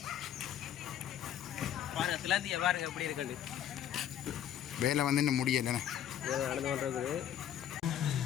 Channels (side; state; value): right; quieter; 10.3 dB